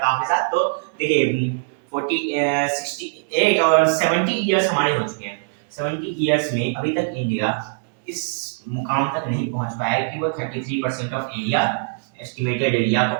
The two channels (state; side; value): silent; left; 64 dB below the other